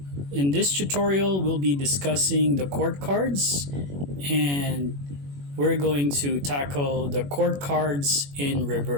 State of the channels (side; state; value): left; late; 21 ms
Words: In this tutorial, we'll be discussing the court cards, and we're going to tackle the court cards in